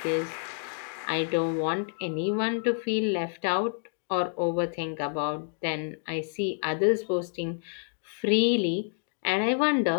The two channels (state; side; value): silent; right; digital silence